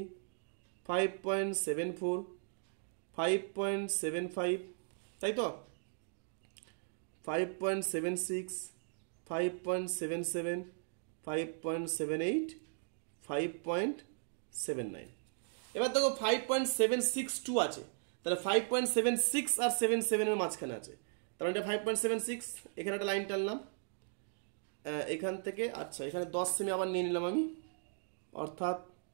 5.74 5.75, তাই তো 5.76 5.77 5.78 5.79। এবার দেখো 5.762 আছে, তাহলে 5.76 আর 77 এর মাঝখানে আছে, তার মানে এটা 5.76। এখানে একটা লাইন টানলাম এখান থেকে। আচ্ছা, এখানে 10 সেমি আবার নিয়ে নিলাম আমি, অর্থাৎ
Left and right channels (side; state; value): left; silent; digital silence